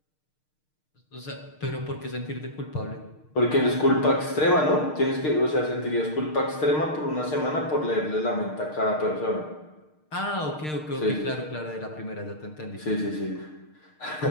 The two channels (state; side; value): late; right; 6.5 ms